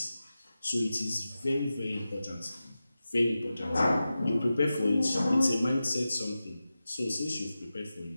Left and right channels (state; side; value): inverted; both; correlation -0.93